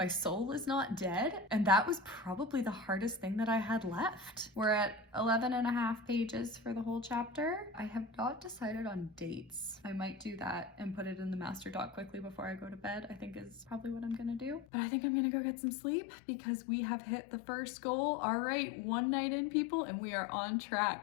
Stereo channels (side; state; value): right; drops out; at 14.7 s